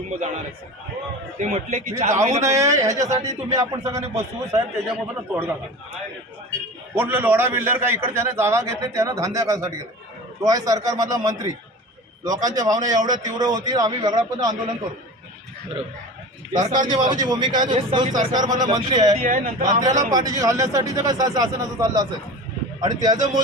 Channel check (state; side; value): normal; both; correlation 0.34